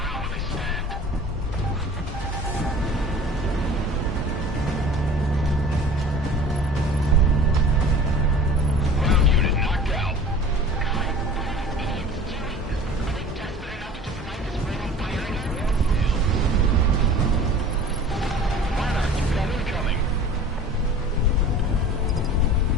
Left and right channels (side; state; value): both; normal; correlation 0.43